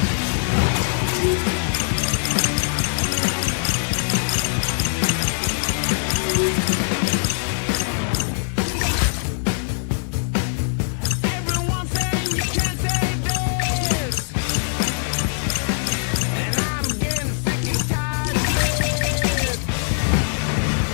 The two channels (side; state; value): right; silent; digital silence